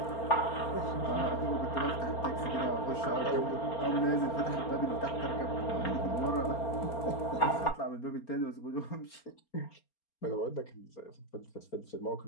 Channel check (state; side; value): late; right; 4.3 ms